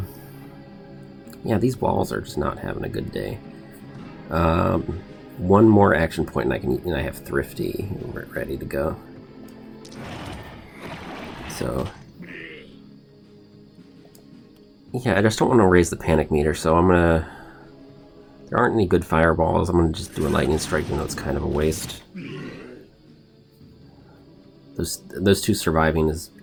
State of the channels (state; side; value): identical; both; correlation 1.00